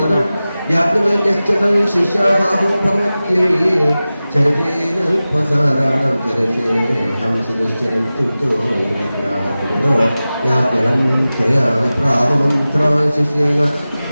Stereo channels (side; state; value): both; inverted; correlation -0.96